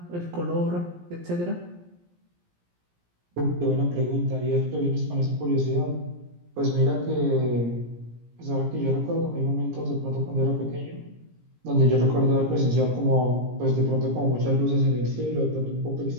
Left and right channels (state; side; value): late; left; 17 ms